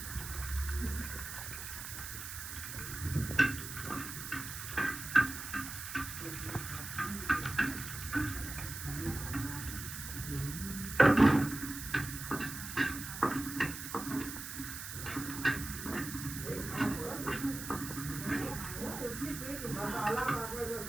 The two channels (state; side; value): noise; right; hiss, 8 dB below the sound